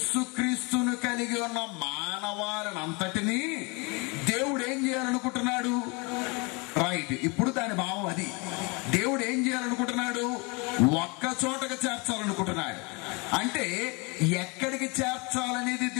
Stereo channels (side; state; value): right; quieter; 29.0 dB